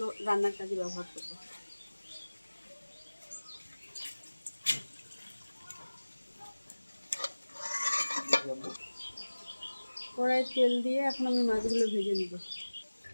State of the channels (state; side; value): inverted; both; correlation -1.00